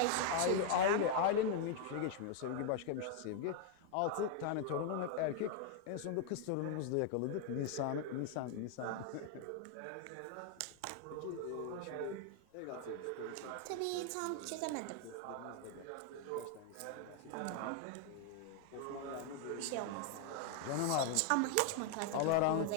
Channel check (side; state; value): both; different; correlation 0.00